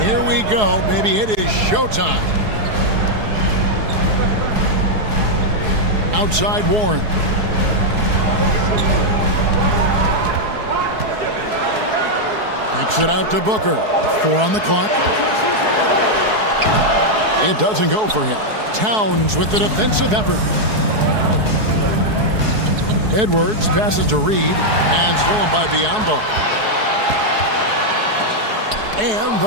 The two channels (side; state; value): left; late; 4.7 ms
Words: here we go. Maybe it is showtime. Outside Warren. Kicks it out to Booker. 4 on the clock. It doesn't go for him. Towns with the defensive effort. Edwards passes to Reed and stolen by Biyombo. And